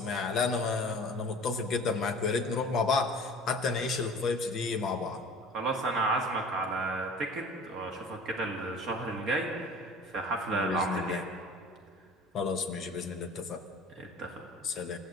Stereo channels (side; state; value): both; normal; correlation 0.43